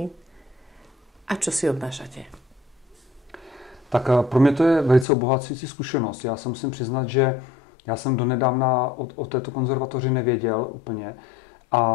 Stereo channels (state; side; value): drops out; right; at 5.1 s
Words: a čo si odnášate? Tak pro mě to je velice obohacující zkušenost. Já se musím přiznat, že já jsem donedávna o této konzervatoři nevěděl úplně